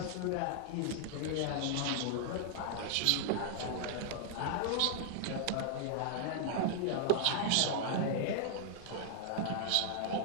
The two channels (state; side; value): different; both; correlation 0.00